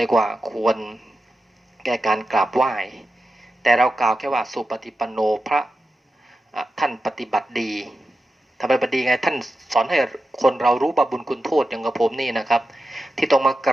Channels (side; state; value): both; normal; correlation 0.91